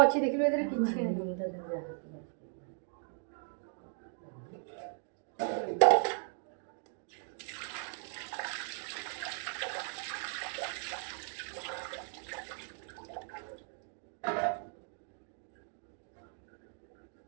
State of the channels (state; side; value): silent; left; 53 dB below the other